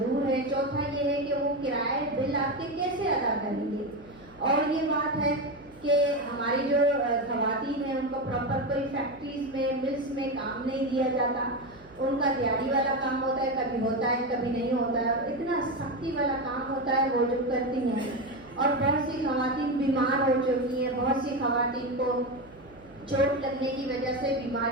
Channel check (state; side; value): noise; right; hum, 23 dB below the sound